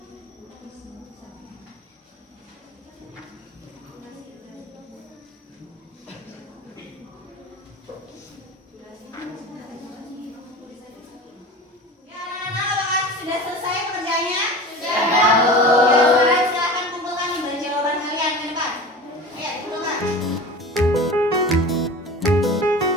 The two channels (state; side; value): normal; both; correlation 0.34